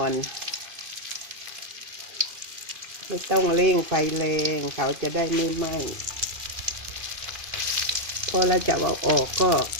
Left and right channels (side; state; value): left; late; 2.5 ms